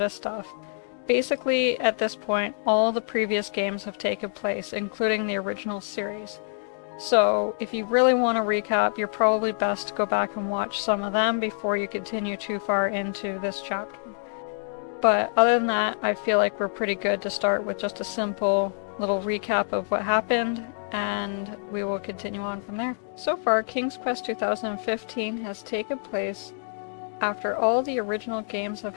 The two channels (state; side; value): silent; right; digital silence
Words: of stuff. Basically, at this point, all the previous games have taken place, including the original series. So, if you really want to recap, you're probably best to go back and watch some of them before you continue too far into this chapter. But other than that, I feel like we're pretty good to start with just a simple little recap of what happened, and we will continue on from there. So far, King's Quest 2015 has taken place after all the original games have